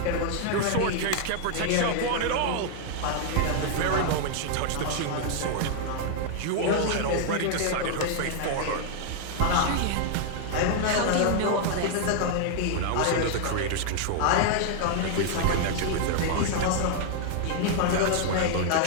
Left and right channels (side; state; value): both; different; correlation 0.00